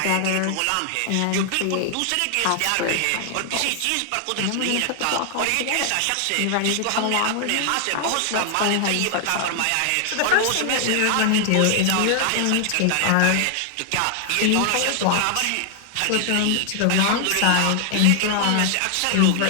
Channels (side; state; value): both; different; correlation 0.00